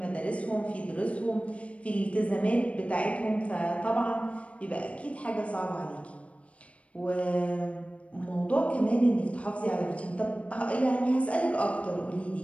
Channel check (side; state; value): right; late; 0.063 ms